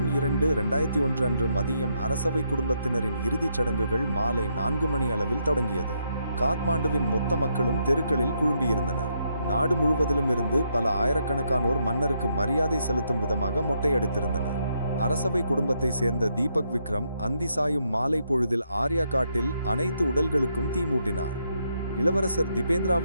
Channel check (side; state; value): both; inverted; correlation -0.77